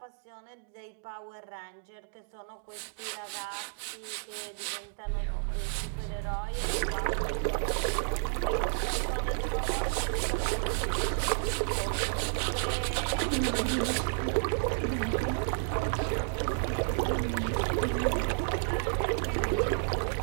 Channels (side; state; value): left; silent; digital silence